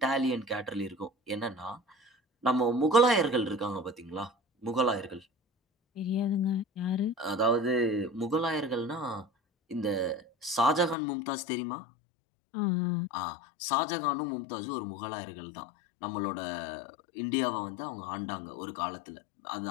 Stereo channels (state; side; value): drops out; right; at 11.0 s